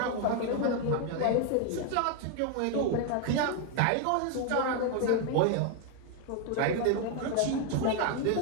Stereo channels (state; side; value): different; both; correlation 0.01